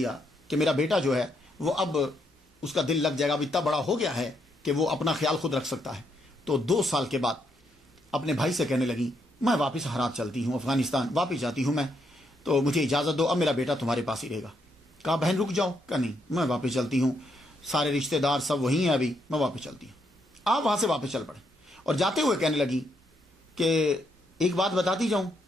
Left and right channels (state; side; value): normal; both; correlation 0.77